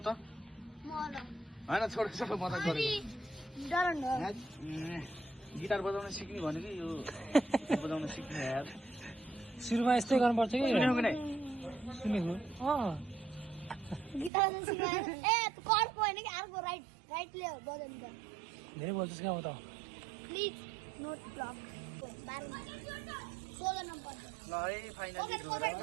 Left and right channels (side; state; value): left; drops out; at 14.3 s